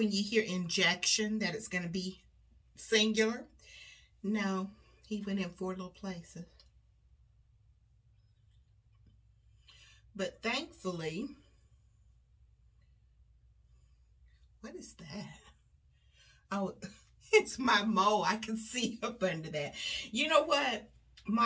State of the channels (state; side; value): identical; both; correlation 1.00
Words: you hear injection that it's going to be singular. No, he went in 4 little places. But thankfully, what is that? Oh, it's my mole. I can see up under that. You know what?